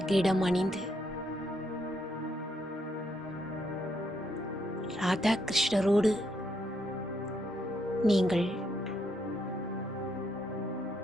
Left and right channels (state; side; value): normal; both; correlation 0.76